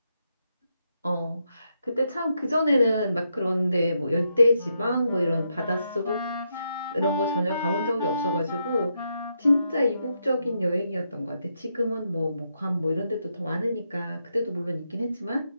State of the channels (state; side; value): inverted; both; correlation -0.81